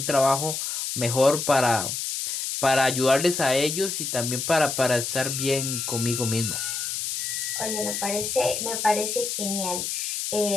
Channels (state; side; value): noise; left; hiss, 3 dB below the sound